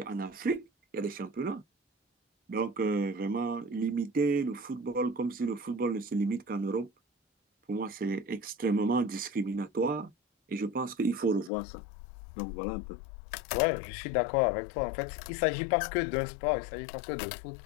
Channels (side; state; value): right; drops out; at 11.5 s